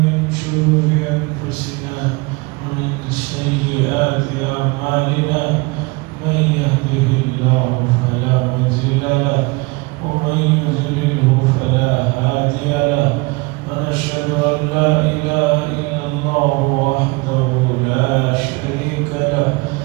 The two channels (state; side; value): quieter; left; 26.0 dB